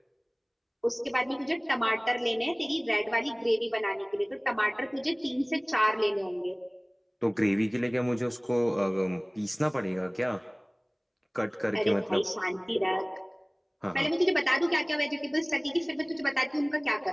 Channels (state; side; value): identical; both; correlation 1.00